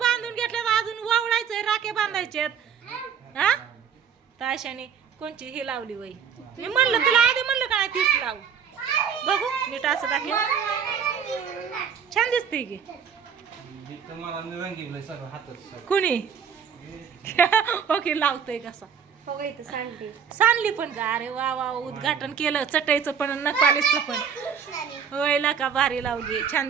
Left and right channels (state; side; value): quieter; left; 7.3 dB